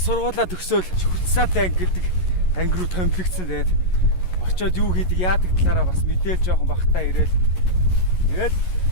төгсөөл Хүртсаатай анги гэдэг анги руу томилогдсон. Тэгээд очоод юу хийдэг яадаг талаараа бас мэдээл жоохон багтаа ирээл. Тэгээд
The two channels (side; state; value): right; late; 11 ms